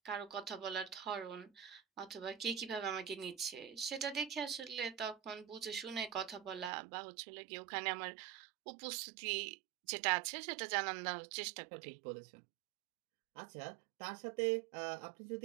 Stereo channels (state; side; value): drops out; left; at 6.7 s